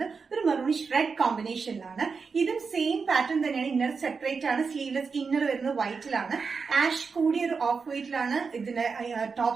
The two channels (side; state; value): left; quieter; 5.1 dB